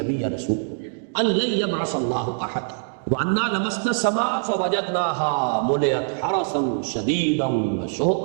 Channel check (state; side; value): silent; left; digital silence